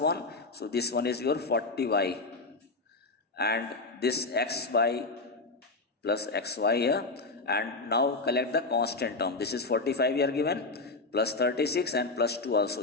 So this one is your 40y. And this xy plus xy here. And now collect the constant term. This is 45 here given, plus 36 and plus 2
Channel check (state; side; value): quieter; right; 3.5 dB